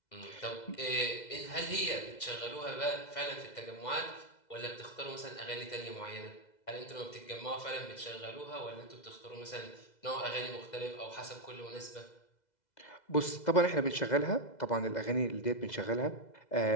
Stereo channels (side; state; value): right; late; 2.0 ms